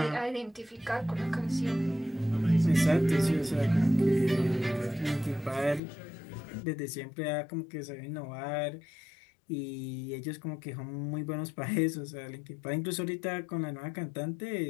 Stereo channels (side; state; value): right; drops out; at 5.8 s